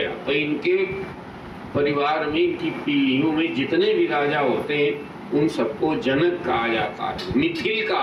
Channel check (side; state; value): both; identical; correlation 1.00